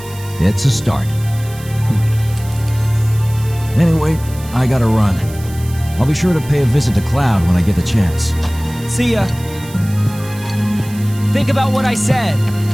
It's a start. Anyway, I gotta run. I'll be sure to pay a visit to Cloud when I get the chance. See ya. Think about what I said.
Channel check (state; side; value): noise; right; hiss, 18 dB below the sound